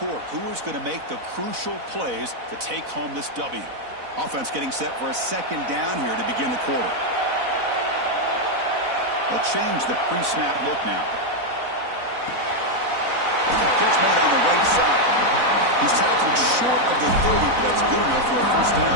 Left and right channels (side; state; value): left; late; 4.0 ms